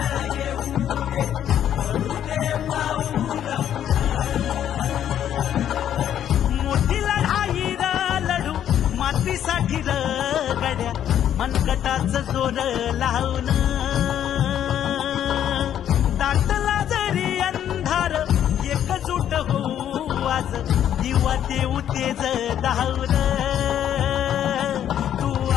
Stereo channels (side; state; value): right; quieter; 10.3 dB